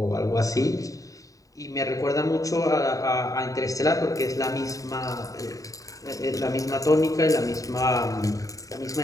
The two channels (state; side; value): late; right; 0.16 ms